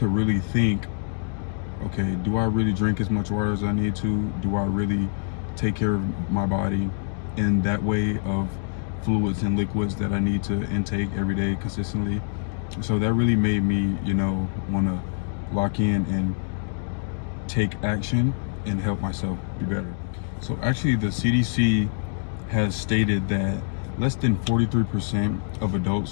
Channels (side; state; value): right; silent; digital silence